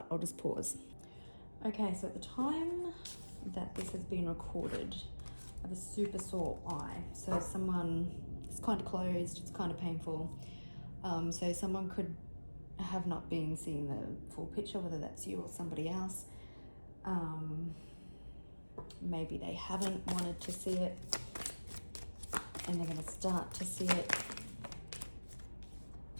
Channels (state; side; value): inverted; both; correlation -1.00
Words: I'll just pause. Okay, so at the time that this has been recorded, I have a super sore eye. So it's kind of closed, it's kind of painful. So someone could have not been seeing the full picture, whether that's you or somebody else. Maybe they haven't wanted to see it and they're going to start to see it.